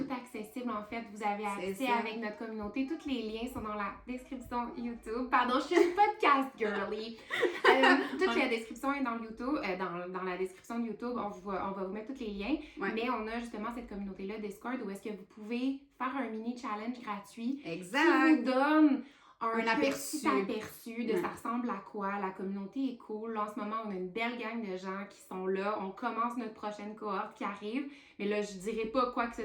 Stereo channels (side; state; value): both; identical; correlation 1.00